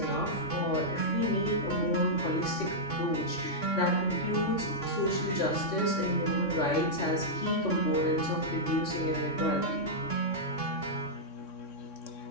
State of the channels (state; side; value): late; right; 3.6 ms